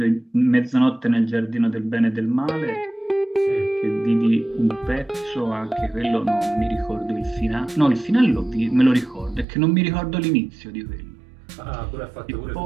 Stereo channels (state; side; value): drops out; left; at 9.5 s